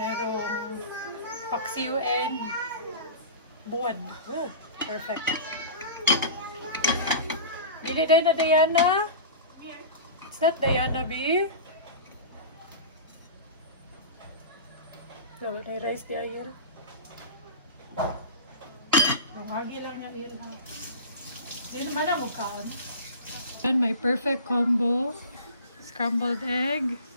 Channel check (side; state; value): both; inverted; correlation -0.34